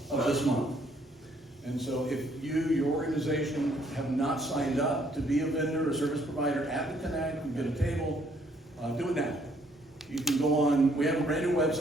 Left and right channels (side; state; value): both; normal; correlation 0.66